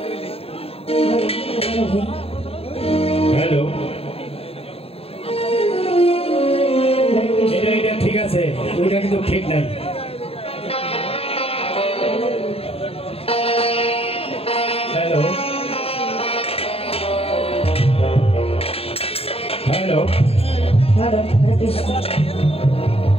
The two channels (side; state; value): right; late; 0.28 ms